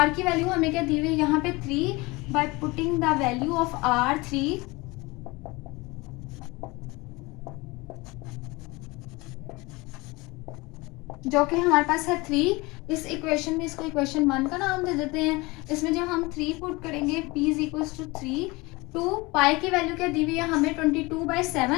की वैल्यू हमें क्या दी हुई है यहाँ पे 3, but putting the value of R 3 जो कि हमारे पास है 3। इस इक्वेशन में इसको इक्वेशन 1 का नाम दे देते हैं। इसमें जब हम 3 पुट करेंगे p is equal to 3 two pi की वैल्यू क्या दी हुई है हमें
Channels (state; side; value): quieter; right; 23.6 dB